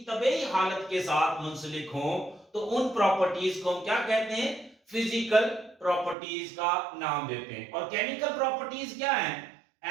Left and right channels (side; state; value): left; drops out; at 6.2 s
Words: तबीई हालत के साथ मुंसलिक हो, तो उन प्रॉपर्टीज को हम क्या कहते हैं, फिजिकल प्रॉपर्टीज का नाम देते हैं। और केमिकल प्रॉपर्टीज क्या है,